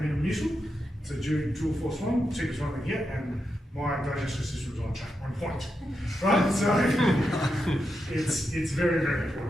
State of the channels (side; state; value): both; normal; correlation 0.86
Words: Muscular. It's a dual force one, cheapest one I can get, and my digestive system is on point, right? So it's very, very